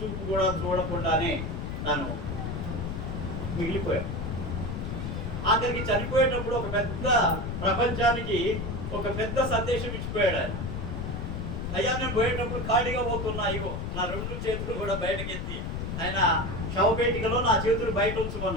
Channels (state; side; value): noise; left; rumble, 4 dB below the sound